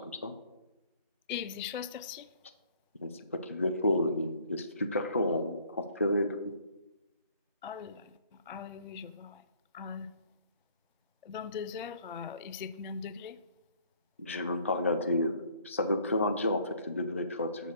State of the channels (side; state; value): both; inverted; correlation -0.59